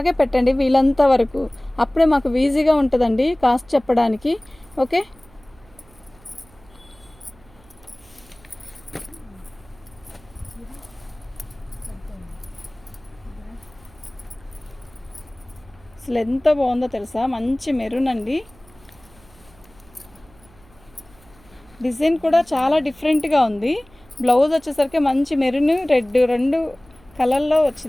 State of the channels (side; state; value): right; noise; hum, 27 dB below the sound